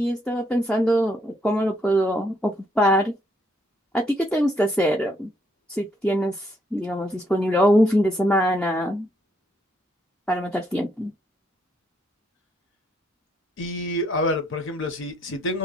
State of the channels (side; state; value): both; normal; correlation 0.72